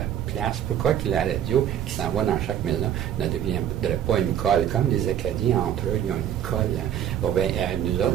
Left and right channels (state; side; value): quieter; left; 10.2 dB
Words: place? Pourquoi que la radio qui s'en va dans chaque maison ne deviendrait pas une colle? Comme les Acadiens, entre eux, ils ont une colle. Hein. Bon, bien, nous